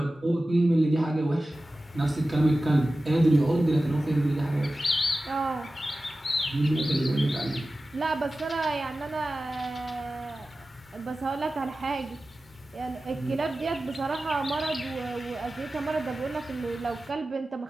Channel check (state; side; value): normal; both; correlation 0.95